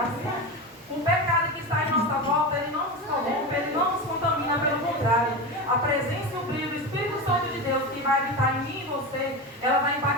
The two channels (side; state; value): both; normal; correlation 0.22